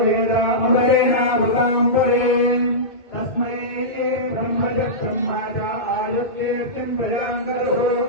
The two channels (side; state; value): right; late; 2.2 ms